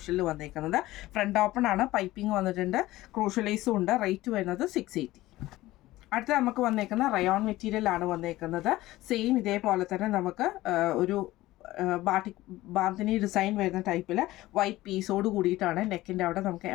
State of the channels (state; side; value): quieter; right; 17.2 dB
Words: വന്നേക്കുന്നത്. ഫ്രണ്ട് ഓപ്പൺ ആണ്, പൈപ്പിംഗ് വന്നിട്ടുണ്ട്, ക്രൂഷ്യൽ ലേസും ഉണ്ട്. റേറ്റ് വരുന്നത് 680. അടുത്ത നമുക്ക് വന്നേക്കുന്ന റയോൺ മെറ്റീരിയൽ ആണ് വന്നേക്കുന്നത്. സെയിം ഇതേപോലെ തന്നെ നമുക്ക് ഒരു ബാന്തിനി ഡിസൈൻ വരുന്ന ടൈപ്പിൽ വൈറ്റ് പീസോട് കൂടിയിട്ടാണ്. നെക്കിൻ്റെ അവിടെ നമുക്ക്